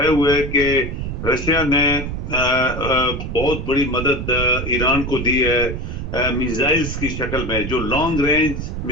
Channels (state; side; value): noise; right; rumble, 5 dB below the sound